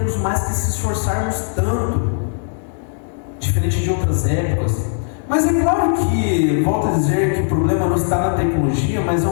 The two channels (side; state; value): right; silent; 65 dB below the other